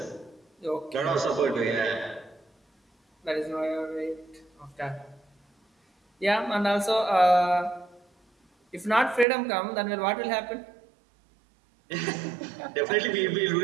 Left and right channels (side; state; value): left; drops out; at 9.2 s